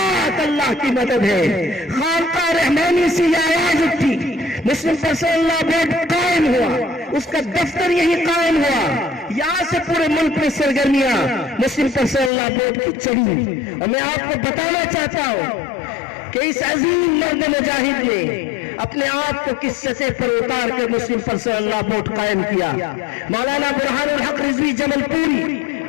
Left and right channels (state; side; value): drops out; right; at 12.3 s